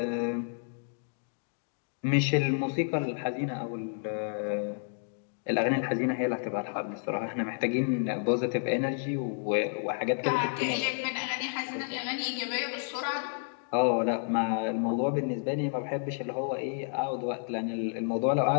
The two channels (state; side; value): silent; right; digital silence